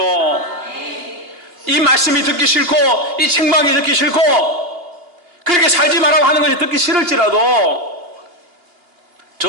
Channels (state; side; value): late; left; 2.8 ms